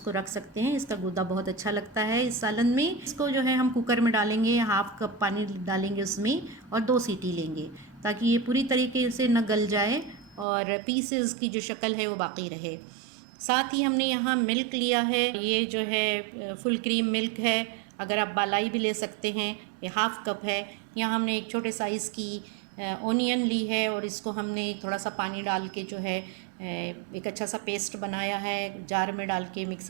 रख सकते हैं। इसका गूदा बहुत अच्छा लगता है इस सालन में। इसको जो है हम कुकर में डालेंगे, 1/2 कप पानी डालेंगे उसमें और 2 सीटी लेंगे ताकि ये पूरी तरीके से न गल जाए और पीसेस की जो शक्ल है वो बाकी रहे। साथ ही हमने यहाँ मिल्क लिया है, ये जो है फुल क्रीम मिल्क है। अगर आप बालाई भी ले सकते हैं। ये 1/2 कप है। यहाँ हमने एक छोटे साइज़ की ओनियन ली है और इसको हमने थोड़ा सा पानी डाल के जो है एक अच्छा सा पेस्ट बनाया है, जार में डाल के,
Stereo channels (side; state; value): left; drops out; at 10.5 s